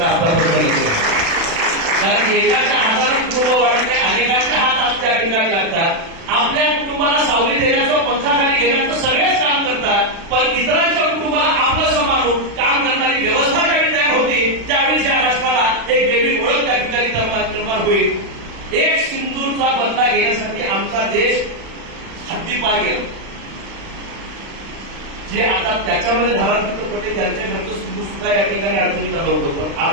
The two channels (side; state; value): left; late; 36 ms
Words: आतापर्यंत. कारण एकाच्या हाताला कुटुंब वाढते, अनेकांच्या हात त्या ठिकाणी लागतात. आपल्या कुटुंबाला सावली देण्याचं, पंखाखाली घेण्याचं सगळेच काम करतात, पण इतरांच्या कुटुंबाला आपलं सांभाळून काम करणारी व्यवस्था ज्यावेळी तयार होती त्यावेळी त्या राष्ट्राला एक वेगळी ओळख त्या ठिकाणी निर्माण होईल. एक सिंधूचा बदला घेण्यासाठी आमचा देश हद्दीपार गेला. जे आता त्याच्यामध्ये धारा चित्रपटे त्यांच्या घरचं सिंधू सुद्धा या ठिकाणी अडचणीत आलं होतं, पण